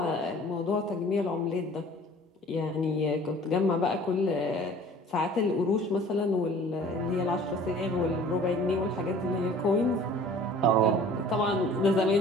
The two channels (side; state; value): both; normal; correlation 0.48